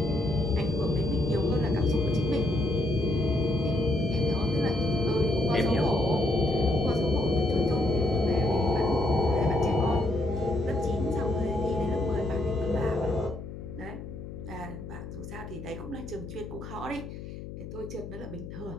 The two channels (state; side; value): noise; left; hum, 11 dB below the sound